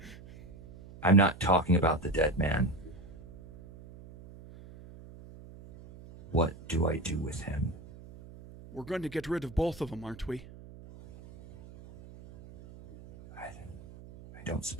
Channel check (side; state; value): right; noise; hum, 18 dB below the sound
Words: I'm not talking about the dead man. What do I do with him? We're going to get rid of both of them, aren't we? I don't